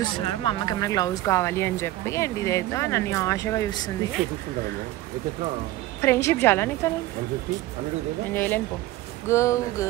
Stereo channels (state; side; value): quieter; left; 16.2 dB